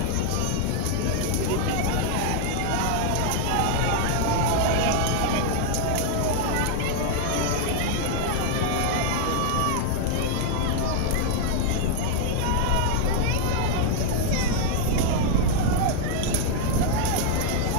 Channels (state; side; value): different; both; correlation 0.00